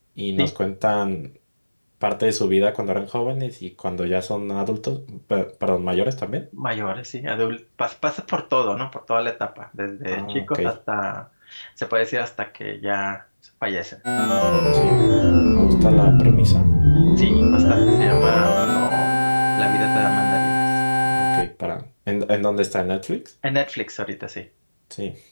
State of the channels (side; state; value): both; inverted; correlation -1.00